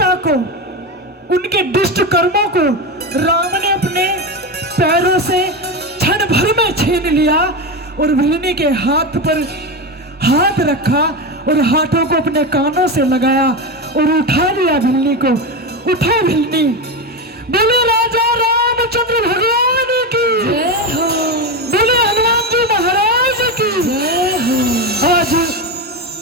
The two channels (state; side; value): normal; both; correlation 0.17